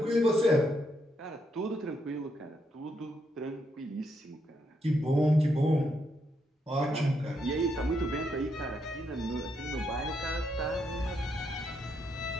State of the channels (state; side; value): normal; both; correlation 0.78